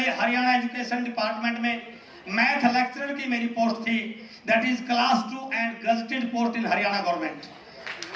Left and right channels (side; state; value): both; identical; correlation 1.00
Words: हरियाणा एजुकेशन डिपार्टमेंट में मैथ लेक्चरर की मेरी पोस्ट थी, that is class 2 and gazetted post in Haryana government.